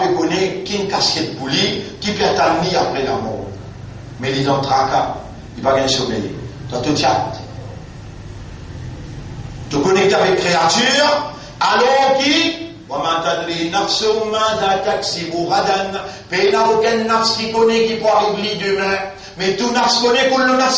connaît qui une casquette pour lui, qui peut attendre après la mort. Mais il est dans le tracas, il va gagner sommeil. Dans tout chat. Tu connectes avec créature, alors qui وما تدري نفس ماذا تكسب غدا. Il n'y a aucun nafs qui connaît qui peut arriver demain. Mais tout nafs connaît que le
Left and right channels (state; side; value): identical; both; correlation 1.00